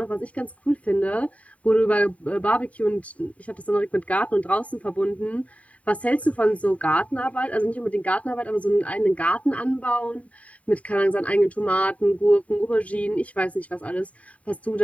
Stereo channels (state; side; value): late; right; 0.067 ms